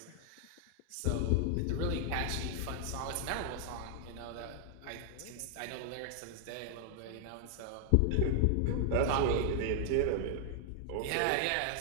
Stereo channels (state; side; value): different; both; correlation 0.00